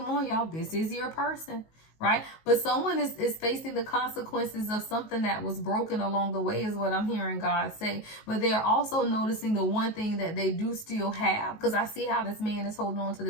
on, y'all. This is your person, right? But someone is facing the consequences of something that was broken along the way, is what I'm hearing God say. But they're also noticing the one thing that they do still have, because I see how this man is holding on to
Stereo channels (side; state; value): right; late; 19 ms